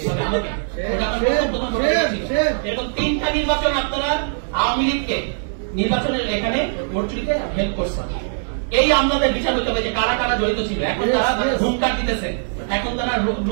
এরকম 3টা নির্বাচন আপনারা আওয়ামী লীগকে নির্বাচনের এখানে ভোট চুরিতে হেল্প করছেন। এই আমলাদের বিচার হতে হবে যে কারা কারা জড়িত ছিল। এখন তারা হুঙ্কার দিতেছে, এখন তারা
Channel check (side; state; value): left; silent; digital silence